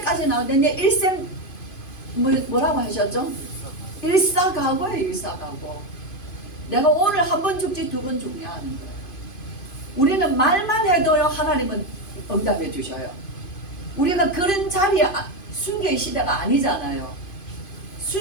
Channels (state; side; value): late; right; 2.5 ms